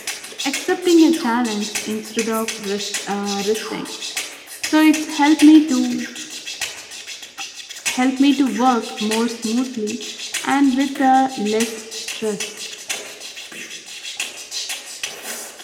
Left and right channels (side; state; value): both; identical; correlation 1.00